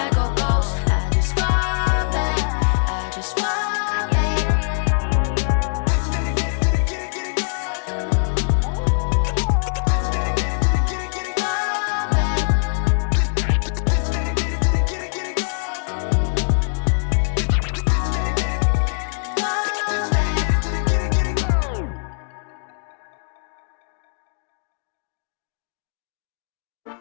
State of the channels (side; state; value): right; silent; digital silence